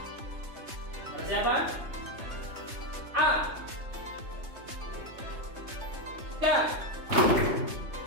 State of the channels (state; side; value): late; left; 3.2 ms